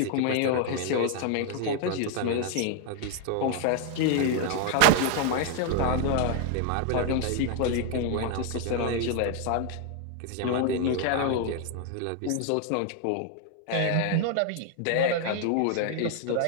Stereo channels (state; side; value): different; both; correlation 0.00